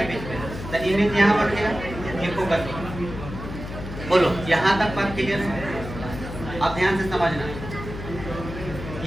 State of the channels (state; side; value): noise; left; hum, 9 dB below the sound